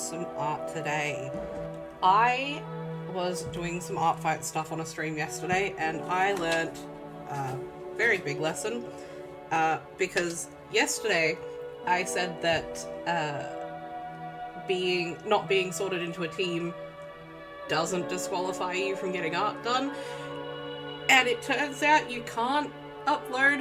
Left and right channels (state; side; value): identical; both; correlation 1.00